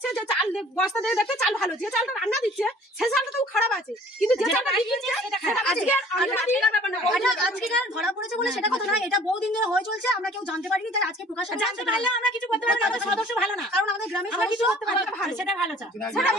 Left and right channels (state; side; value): normal; both; correlation 0.52